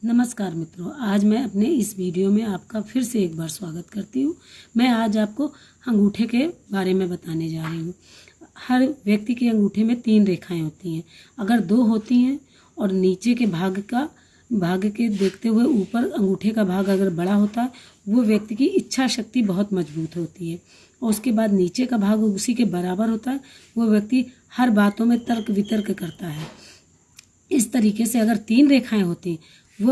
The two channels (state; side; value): identical; both; correlation 1.00